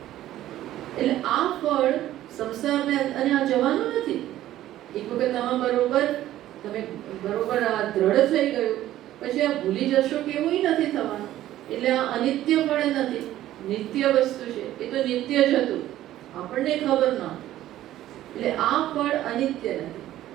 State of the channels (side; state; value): left; quieter; 13.7 dB